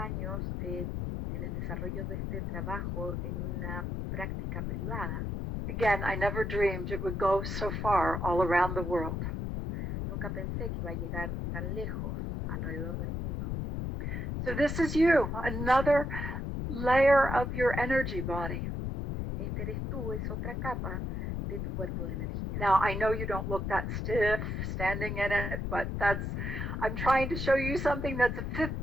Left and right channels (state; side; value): noise; left; rumble, 3 dB below the sound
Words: en el desarrollo de este trabajo en una práctica privada. Again, I never dreamed it would go so far all around the world. Nunca pensé que iba a llegar tan lejos alrededor del mundo. So this is you, another layer of your energy body. Este eres tú, es otra capa de tu cuerpo de energía. Now, I know you don't look that stiff standing in it, but I'm trying to show you something that's a fifth